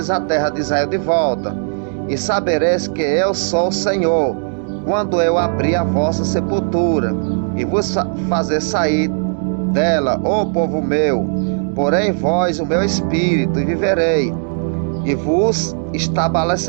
a terra de Israel de volta. E sabereis que eu sou o Senhor, quando eu abrir a vossa sepultura e vos fazer sair dela, ó povo meu. Porém vós o meu espírito, e viverei, e vos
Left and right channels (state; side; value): silent; left; digital silence